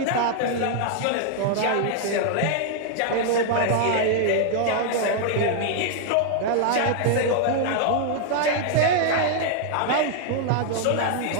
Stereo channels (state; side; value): different; both; correlation 0.00